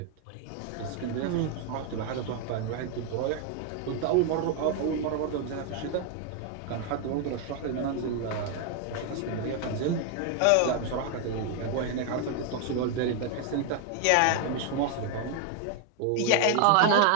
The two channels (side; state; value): both; different; correlation 0.01